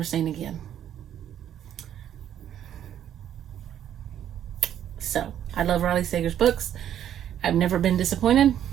seen again. So, I love Riley Sager's books. I've never been disappointed.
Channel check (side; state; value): left; quieter; 10.4 dB